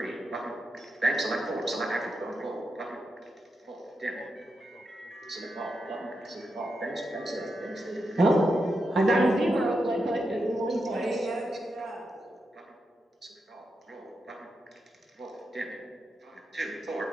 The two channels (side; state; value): both; normal; correlation 0.86